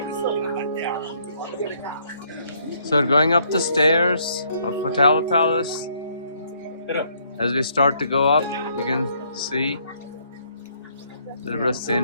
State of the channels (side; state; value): both; inverted; correlation -0.68